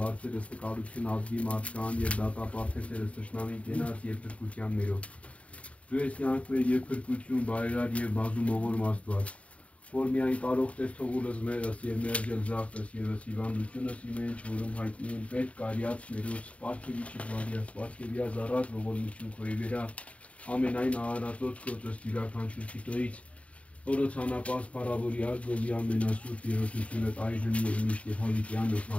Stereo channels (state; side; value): late; right; 0.065 ms